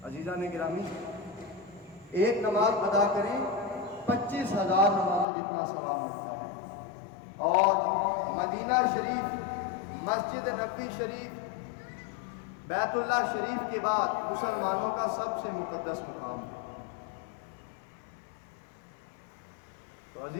عزیزان گرامی، ایک نماز ادا کریں 25,000 نمازوں جتنا ثواب ملتا ہے۔ اور مدینہ شریف، مسجد نبوی شریف، بیت اللہ شریف کے بعد مسلمانوں کا سب سے مقدس مقام ہے۔ تو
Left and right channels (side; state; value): right; drops out; at 5.2 s